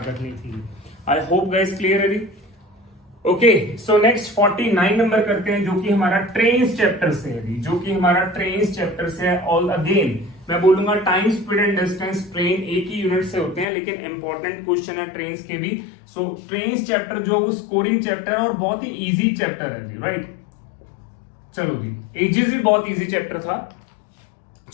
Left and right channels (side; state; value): right; drops out; at 13.7 s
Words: करनी थी। आई होप गाइस क्लियर है जी। ओके, सो नेक्स्ट 49 नंबर करते हैं, जो कि हमारा ट्रेन्स चैप्टर से है, जो कि हमारा ट्रेन्स चैप्टर से है। ऑल अगेन मैं बोलूंगा time, speed and distance, train एक ही यूनिट से होते हैं, लेकिन इंपॉर्टेंट क्वेश्चन है ट्रेन्स के भी। सो ट्रेन्स चैप्टर जो वो स्कोरिंग चैप्टर है और बहुत ही इजी चैप्टर है जी, राइट। चलो जी, एजेस भी बहुत इजी चैप्टर था।